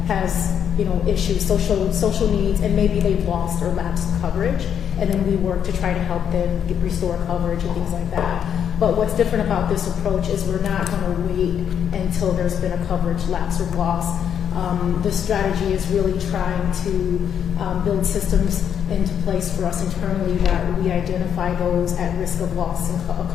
has issues, social needs, and maybe they've lost or lapsed coverage, and then we work to try to help them restore coverage and things like that. But what's different about this approach is we're not going to wait until there's been a coverage lapse or loss. The strategy is really trying to build systems into place for us internally that we identify those at risk of loss and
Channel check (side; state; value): right; quieter; 8.6 dB